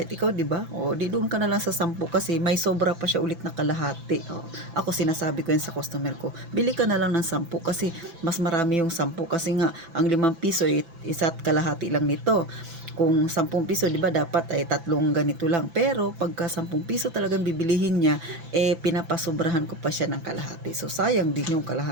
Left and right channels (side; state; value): left; late; 6.0 ms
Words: ikaw, 'di ba? O di doon ka na lang sa 10 kasi may sobra pa siya ulit na kalahati. Ako sinasabi ko yan sa customer ko. Bili ka na lang ng 10 kasi mas marami yung 10 kasi nga ang 5 piso isa't kalahati lang nito. Kung 10 piso, di ba, dapat ay 3 ganito lang. Pero pagka 10 piso talagang bibilihin niya, pinapasobrahan ko pa siya ng kalahati. So sayang din yung